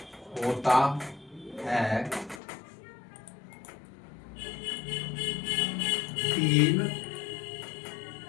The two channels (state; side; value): drops out; right; at 2.4 s